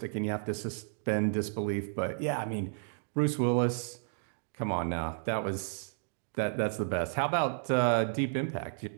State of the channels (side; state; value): left; silent; digital silence